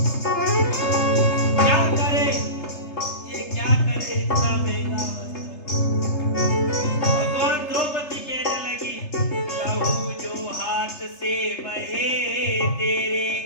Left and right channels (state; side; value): late; right; 3.3 ms